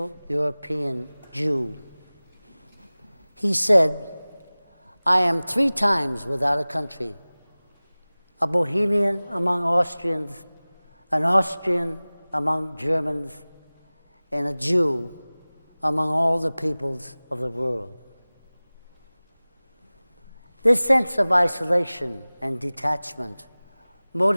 European Jew. He said, "I am 3 times without a country, a Bohemian among Austrians, an Austrian among Germans, and a Jew among all the peoples of the world." This sense of isolation and detachment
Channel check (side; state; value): both; inverted; correlation -0.99